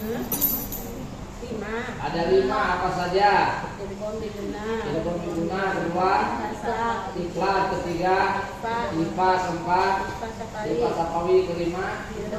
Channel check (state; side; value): identical; both; correlation 1.00